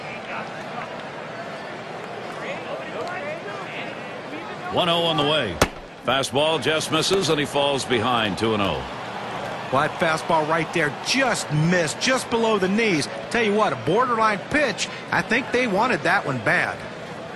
One 0 on the way. Fastball just misses and he falls behind. 2-0. Well, that fastball right there just missed, just below the knees. Tell you what, a borderline pitch. I think they wanted that one bad.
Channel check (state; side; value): identical; both; correlation 1.00